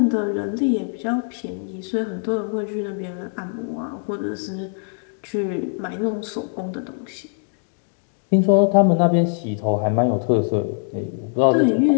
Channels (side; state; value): right; silent; 62 dB below the other